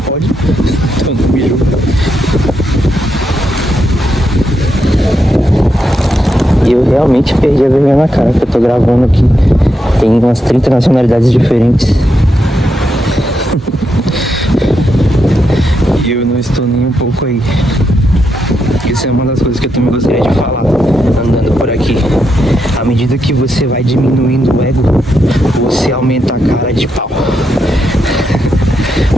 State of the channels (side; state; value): both; normal; correlation 0.82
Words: então não me julga. E eu realmente perdi a vergonha na cara, porque eu tô gravando aqui. Tem umas 30 nacionalidades diferentes. E eu não estou nem um pouco aí. Isso é uma das coisas que eu também gostaria de falar, andando por aqui. À medida que você vai diminuindo o ego, você aumenta a cara de pau.